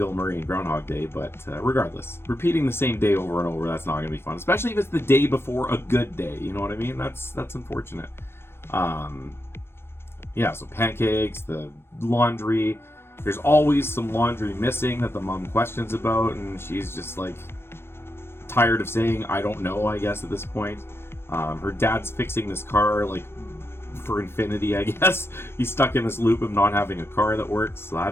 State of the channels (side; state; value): right; late; 0.12 ms